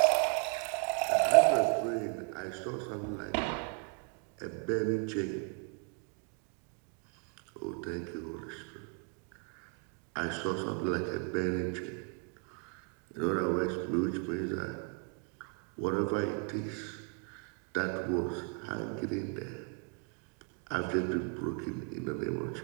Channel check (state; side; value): quieter; left; 38.3 dB